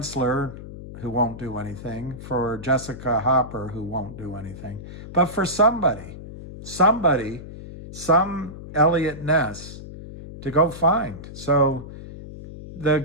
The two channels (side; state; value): left; noise; hum, 12 dB below the sound